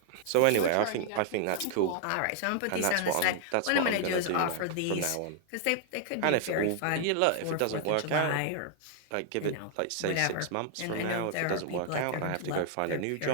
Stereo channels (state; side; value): different; both; correlation 0.00